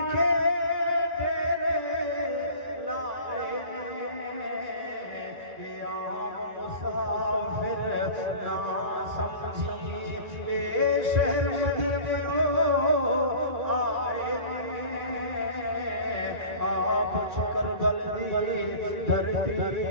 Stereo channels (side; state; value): left; late; 2.3 ms